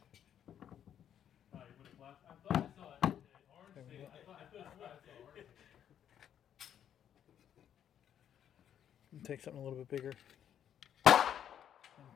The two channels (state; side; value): quieter; right; 9.6 dB